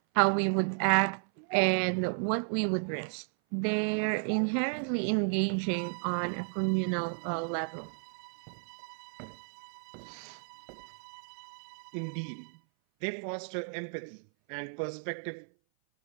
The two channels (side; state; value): left; silent; 56 dB below the other